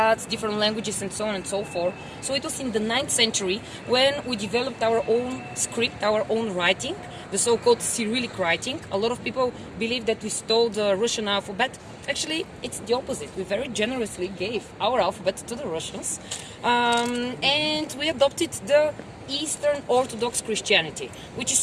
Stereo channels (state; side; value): identical; both; correlation 1.00